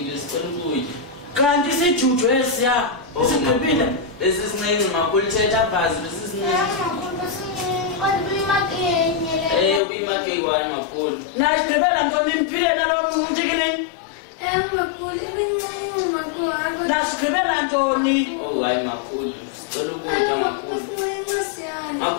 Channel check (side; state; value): right; drops out; at 9.8 s